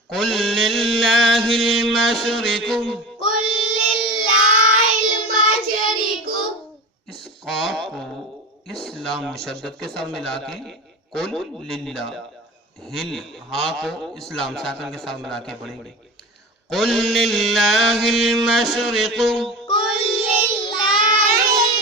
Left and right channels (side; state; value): both; normal; correlation 0.30